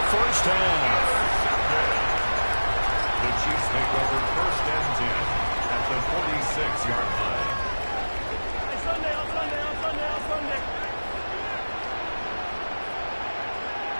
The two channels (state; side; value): inverted; both; correlation -1.00